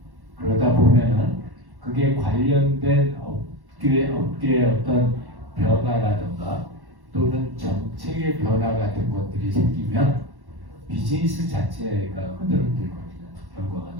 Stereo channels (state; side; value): late; left; 1.1 ms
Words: 그러다 보면은 그게 관련된 업계의 어떤 변화라든가 또는 정책의 변화 같은 것들이 생기면 비즈니스 자체가 흔들흔들거리는 결과가